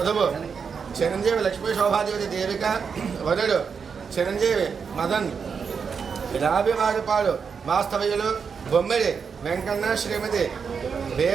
చిరంజీవి లక్ష్మీ శోభాదేవతి దేవిక వరుడు చిరంజీవి మదన్. రాభివారిపాడు వాస్తవ్యులు బొమ్మిడి వెంకన్న శ్రీమతి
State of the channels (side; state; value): left; quieter; 6.1 dB